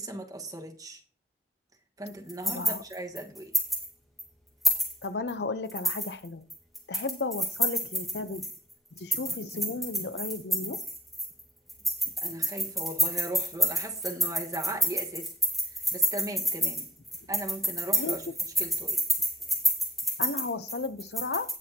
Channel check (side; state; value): both; normal; correlation 0.57